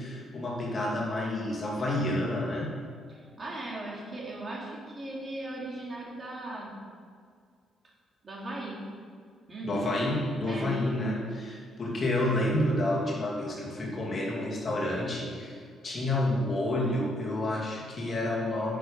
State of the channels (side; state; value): both; normal; correlation 0.71